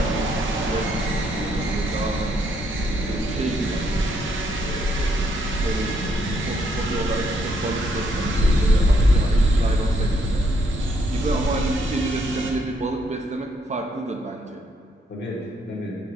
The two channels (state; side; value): normal; both; correlation 0.73